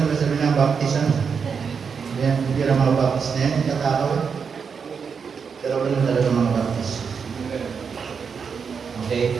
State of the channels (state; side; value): quieter; left; 6.1 dB